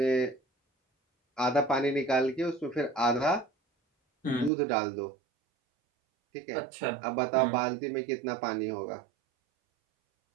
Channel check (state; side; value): drops out; left; at 4.5 s